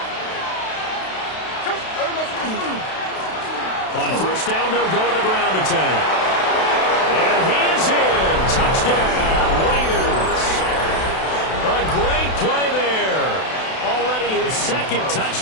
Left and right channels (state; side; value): late; right; 32 ms